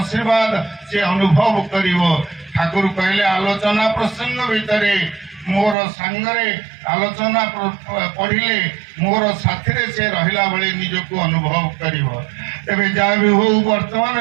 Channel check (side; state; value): left; drops out; at 5.8 s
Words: ସେ ଅନୁଭବ କରିବ। ଠାକୁର କହିଲେ ଆଲୋଚନା ପ୍ରସଙ୍ଗ ଭିତରେ ମୋର ସାଙ୍ଗରେ ଆଲୋଚନା ପଢିଲେ ମୋର ସାଥିରେ ସେ ରହିଲା ଭଳି ନିଜକୁ ଅନୁଭବ କରିବ। ତେବେ ଯାହା ବି ହଉ